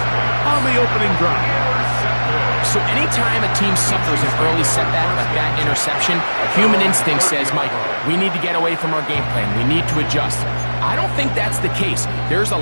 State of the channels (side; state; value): both; inverted; correlation -1.00